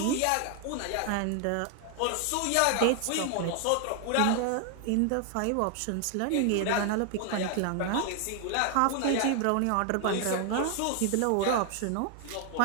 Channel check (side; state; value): both; different; correlation 0.00